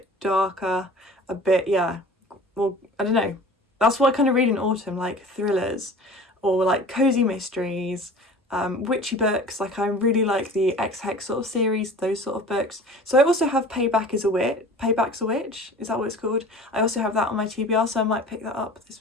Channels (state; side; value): normal; both; correlation 0.41